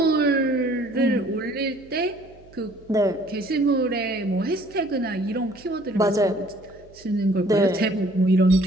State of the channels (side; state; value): right; noise; hum, 25 dB below the sound